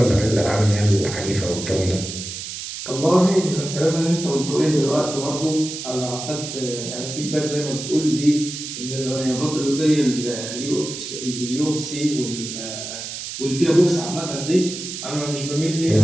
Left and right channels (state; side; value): noise; right; hiss, 8 dB below the sound